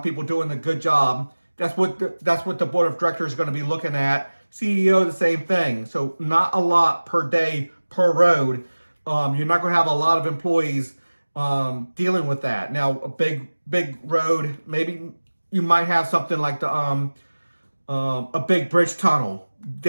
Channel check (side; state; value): both; inverted; correlation -1.00